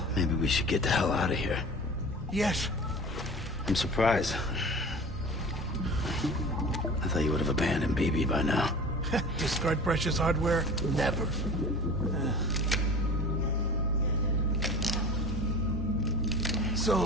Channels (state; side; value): normal; both; correlation 0.38